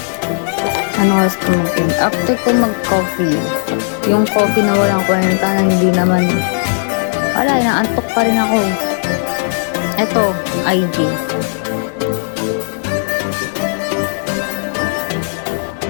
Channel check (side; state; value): right; silent; digital silence